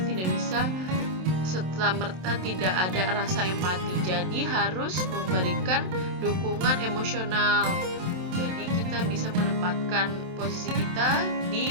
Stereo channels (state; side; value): late; left; 27 ms